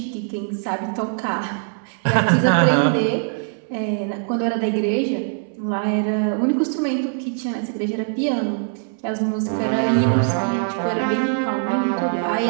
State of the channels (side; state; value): left; silent; 64 dB below the other